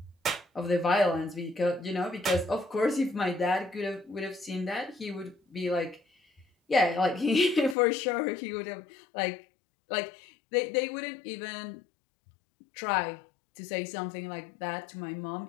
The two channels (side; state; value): right; drops out; at 7.8 s